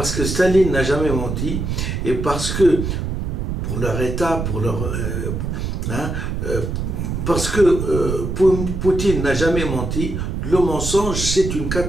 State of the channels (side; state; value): right; noise; rumble, 3 dB below the sound